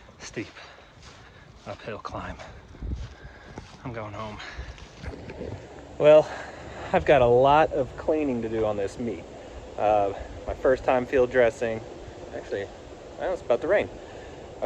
uphill climb. I'm going home. Well, I've got a lot of cleaning to do on this meat. My first time field dressing, actually, well, it's about to rain.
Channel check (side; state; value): both; identical; correlation 1.00